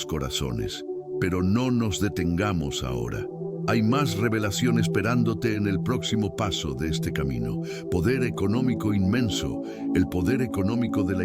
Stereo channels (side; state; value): both; identical; correlation 1.00